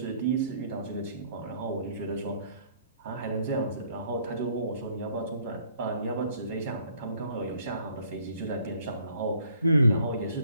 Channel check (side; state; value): both; inverted; correlation -0.60